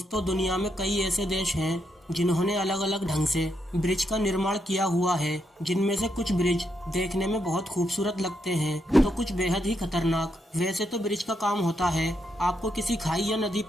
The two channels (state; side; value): normal; both; correlation 0.80